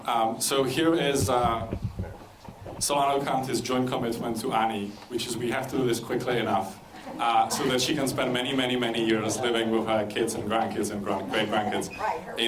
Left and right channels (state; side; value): identical; both; correlation 1.00